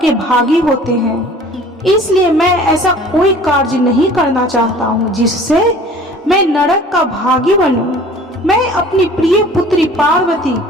भागी होते हैं। इसलिए मैं ऐसा कोई कार्य नहीं करना चाहता हूँ जिससे मैं नरक का भागी बनूं। मैं अपनी प्रिय पुत्री पार्वती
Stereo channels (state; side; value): normal; both; correlation 0.47